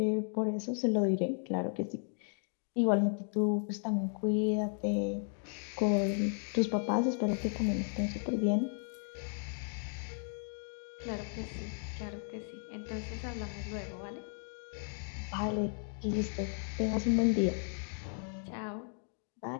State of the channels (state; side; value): silent; right; 54 dB below the other